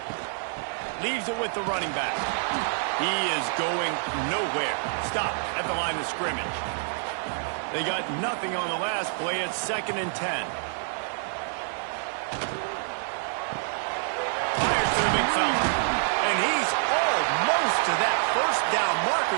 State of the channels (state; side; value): silent; left; digital silence